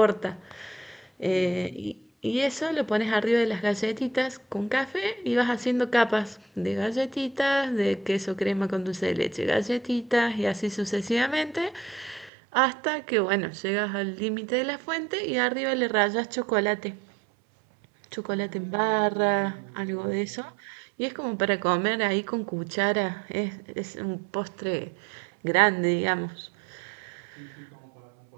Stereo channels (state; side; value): drops out; left; at 12.3 s